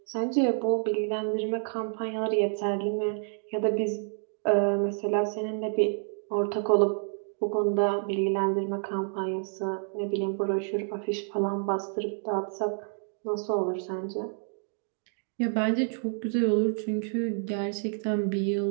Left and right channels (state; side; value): silent; left; 59 dB below the other